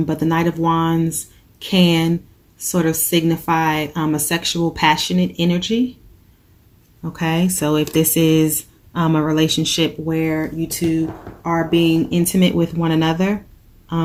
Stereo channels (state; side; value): identical; both; correlation 1.00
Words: the Knight of Wands can sort of signify a sexual, passionate energy. Okay, so if this is a relationship where you two are being intimate with one another,